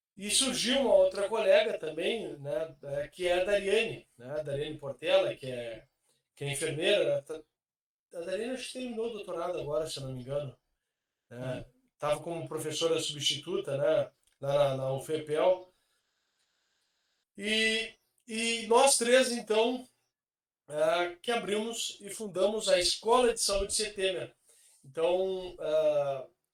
e surgiu uma outra colega também, né, que é a Dariane, né, a Dariane Portela, que é enfermeira. A Dariane acho que terminou o doutorado agora, se eu não me engano. Né? Estava como professora substituta, né? Na UFPEL. E nós três, então, que abrimos e fundamos a Escola de Saúde Setemer. Então,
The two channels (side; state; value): both; identical; correlation 1.00